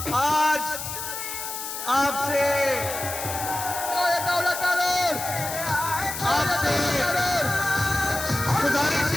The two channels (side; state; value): left; noise; hiss, 6 dB below the sound